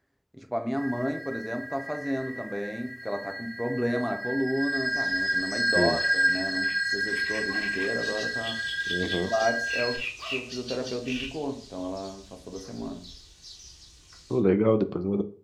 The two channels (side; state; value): both; identical; correlation 1.00